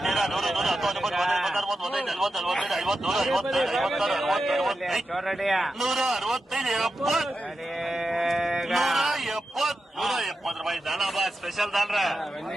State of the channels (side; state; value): both; normal; correlation 0.90